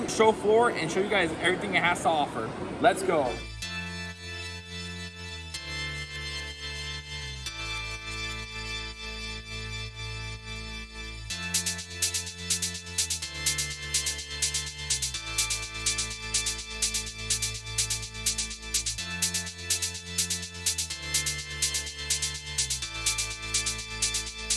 show floor, and show you guys everything it has to offer. Let's go.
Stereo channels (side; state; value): both; identical; correlation 1.00